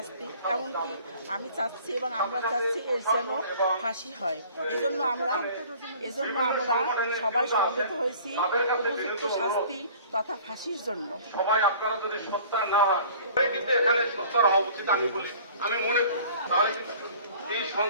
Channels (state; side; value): inverted; both; correlation -0.49